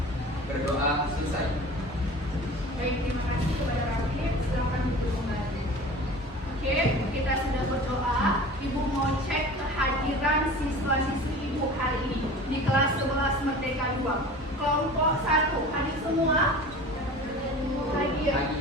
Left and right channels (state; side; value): normal; both; correlation 0.39